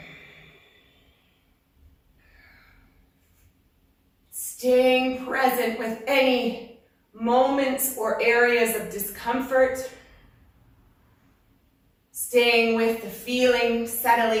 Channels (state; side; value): identical; both; correlation 1.00